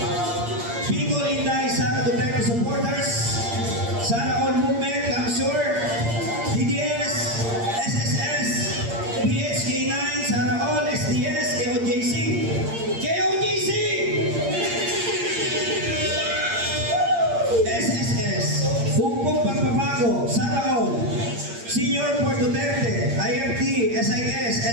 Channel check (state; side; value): late; left; 8.7 ms